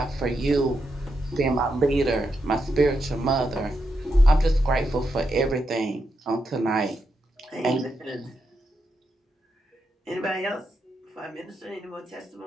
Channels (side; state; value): both; normal; correlation 0.84